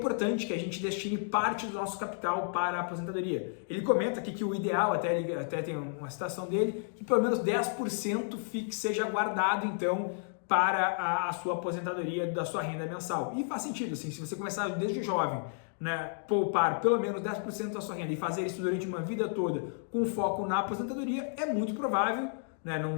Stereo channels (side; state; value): right; silent; digital silence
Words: que a gente destine parte do nosso capital para a aposentadoria. Ele comenta aqui que o ideal, até tem uma citação dele, que pelo menos 10% seja guardado então para a sua aposentadoria da sua renda mensal. E faz sentido, assim, se você começar desde jovem, né, poupar pelo menos 10% da sua renda e fazer isso durante uma vida toda com foco na aposentadoria, é muito provável, né,